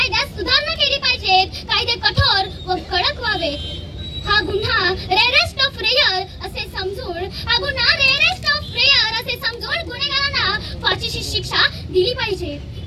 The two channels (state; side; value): identical; both; correlation 1.00